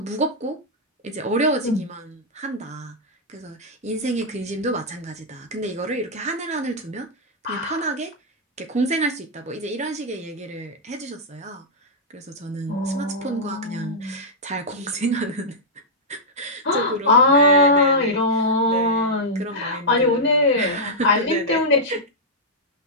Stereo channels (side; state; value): both; normal; correlation -0.08